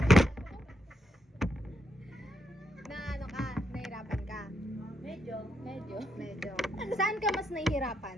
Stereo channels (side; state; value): both; normal; correlation 0.80